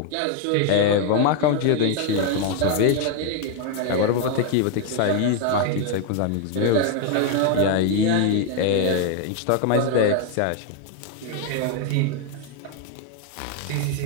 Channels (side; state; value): both; different; correlation 0.01